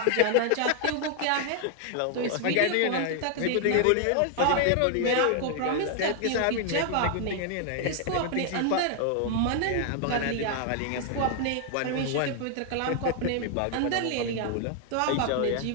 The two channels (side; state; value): both; different; correlation 0.00